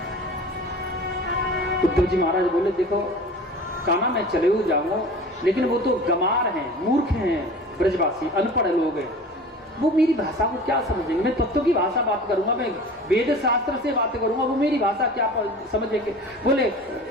उद्धव जी महाराज बोले देखो कान्हा मैं चले हुए जाऊंगा, लेकिन वो तो गमार हैं, मूर्ख हैं, ब्रजवासी अनपढ़ लोग हैं, वो मेरी भाषा को क्या समझेंगे। मैं तत्व की भाषा बात करूंगा, मैं वेद शास्त्र से बात करूंगा, वो मेरी भाषा क्या समझेंगे। बोले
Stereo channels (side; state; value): both; normal; correlation 0.39